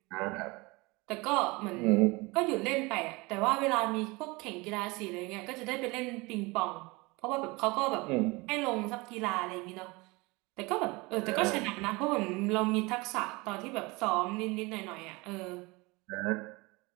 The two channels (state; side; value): quieter; left; 24.5 dB